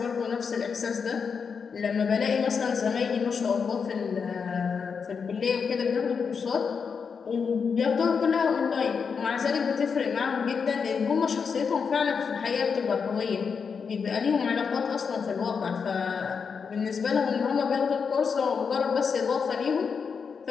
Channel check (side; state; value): right; quieter; 5.9 dB